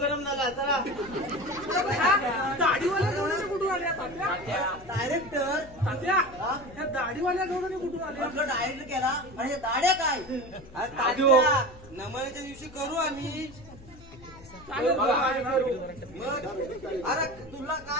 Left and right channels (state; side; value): noise; left; hum, 21 dB below the sound